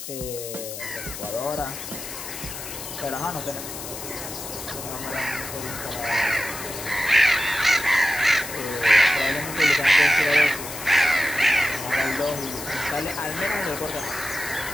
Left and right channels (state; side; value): noise; left; hiss, 9 dB below the sound